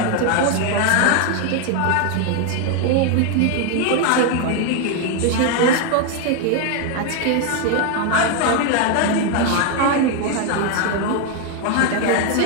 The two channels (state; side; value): different; both; correlation 0.01